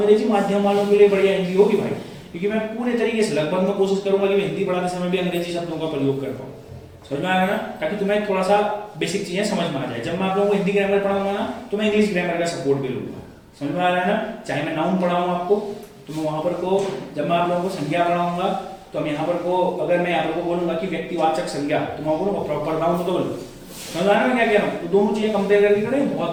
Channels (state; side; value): identical; both; correlation 1.00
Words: माध्यम वालों के लिए बढ़िया हिंदी होगी भाई, क्योंकि मैं पूरे तरीके से लगभग मैं कोशिश करूंगा कि मैं हिंदी पढ़ाते समय भी अंग्रेजी शब्दों का प्रयोग कर पाऊँ। समझ में आ रहा है ना? ताकि तुम्हें थोड़ा सा बेसिक चीजें समझ में आ जाए। जब मैं आप लोगों को हिंदी ग्रामर पढ़ाऊंगा ना, तो मैं इंग्लिश ग्रामर का सपोर्ट भी लूंगा। समझ में आ रहा है ना? चाहे मैं नाउन पढ़ाऊँ आपको, तो मैं वहां पर को, जब मैं आप लोगों को संज्ञा पढ़ाऊंगा, तो हम यहाँ पर को, अगर मैं यहाँ पर को बोलूंगा कि व्यक्तिवाचक संज्ञा, तो मैं बोलूंगा प्रॉपर नाउन तो बोलूँ। समझ आ रहा है मैं क्या कह रहा हूँ? तो दोनों चीजें कंपेयर करके करें,